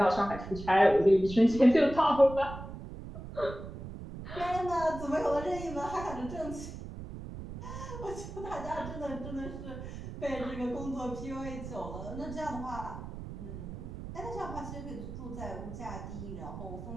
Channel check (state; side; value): noise; right; rumble, 10 dB below the sound